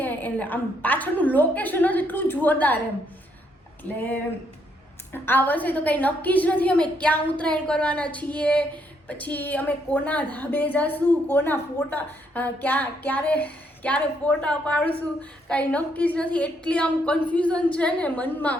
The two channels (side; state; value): both; normal; correlation 0.73